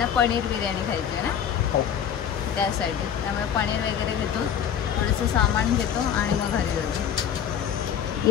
पनीर बिर्याणी खायची आहे ना, त्यासाठी. त्यामुळे पनीर वगैरे घेतो, थोडंसं सामान घेतो आणि मग घरी जातो. ही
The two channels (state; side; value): quieter; right; 8.8 dB